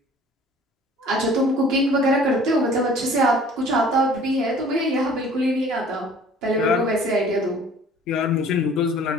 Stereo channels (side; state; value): both; normal; correlation 0.50